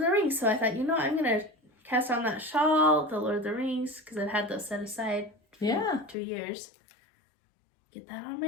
the Rings. So I thought, I'm going to cast on that shawl, the Lord of the Rings, because I've had those set aside for 2 years. Get that on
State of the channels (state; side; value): drops out; right; at 6.2 s